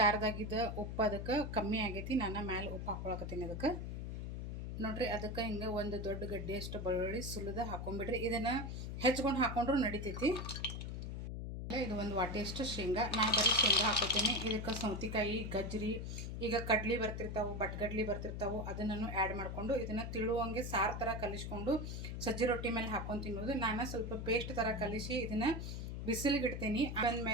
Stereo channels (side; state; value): left; noise; hum, 5 dB below the sound